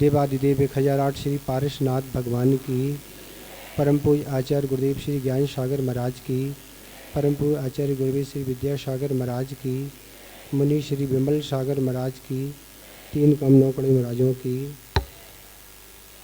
1008 श्री पारसनाथ भगवान की, परम पूज्य आचार्य गुरुदेव श्री ज्ञान सागर महाराज की, परम पूज्य आचार्य गुरुदेव श्री विद्यासागर महाराज की, मुनि श्री विमल सागर महाराज की, 3 कमनौकड़ी महाराजों की,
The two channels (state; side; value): identical; both; correlation 1.00